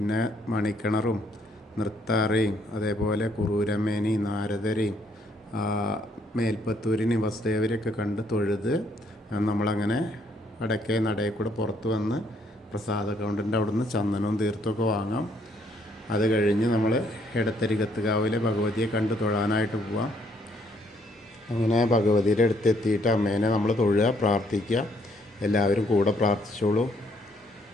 മണിക്കിണറും നൃത്താറയും അതേപോലെ കുറൂരമ്മേനെയും നാരദരെയും മേൽപ്പത്തൂരിനെയും വസുദേവരെയൊക്കെ കണ്ട് തൊഴുത് നമ്മളങ്ങനെ വടക്കേ നടയിൽ കൂടെ പുറത്ത് വന്ന് പ്രസാദ കൗണ്ടറിൻ്റെ അവിടെ നിന്ന് ചന്ദനവും തീർത്ഥമൊക്കെ വാങ്ങാം. അത് കഴിഞ്ഞ് നമ്മൾ എടത്തരികത്തുകാവിലെ ഭഗവതിയെ കണ്ട് തൊഴാനായിട്ട് പോവാം. അങ്ങനെ ഭഗവതിയുടെ അടുത്തെത്തിയിട്ട് അമ്മേനെ നമ്മൾ തൊഴുക, പ്രാർത്ഥിക്കുക. എല്ലാവരും കൂടെ പ്രാർത്ഥിച്ചോളൂ.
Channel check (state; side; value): normal; both; correlation 0.69